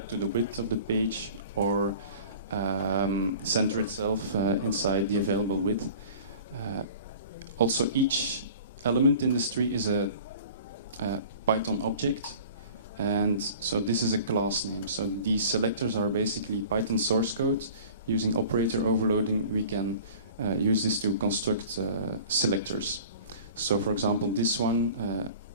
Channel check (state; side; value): inverted; both; correlation -0.44